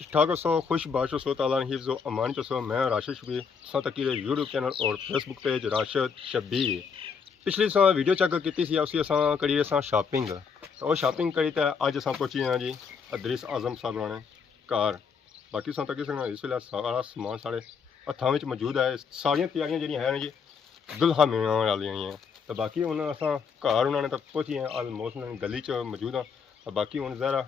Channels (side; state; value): right; quieter; 6.0 dB